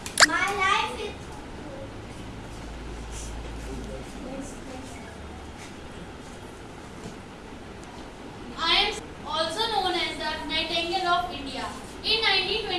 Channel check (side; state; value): both; identical; correlation 1.00